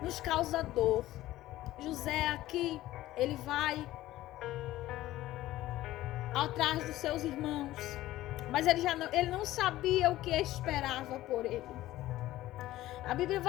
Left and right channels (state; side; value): quieter; right; 15.5 dB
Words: nos causa dor. José aqui, ele vai atrás dos seus irmãos, mas ele não sabia o que esperava por ele. A Bíblia